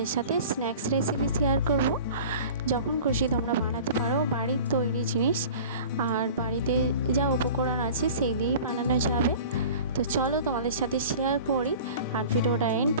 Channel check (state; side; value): inverted; both; correlation -0.41